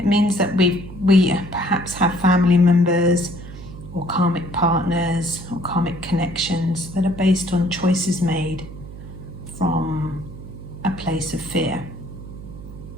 means that we perhaps have family members or karmic partners or karmic connections that are based on choices made from a place of fear,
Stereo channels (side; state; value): right; noise; hum, 13 dB below the sound